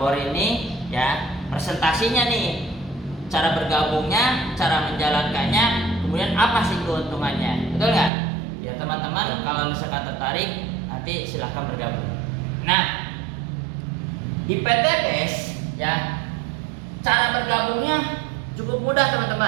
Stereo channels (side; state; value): left; drops out; at 8.1 s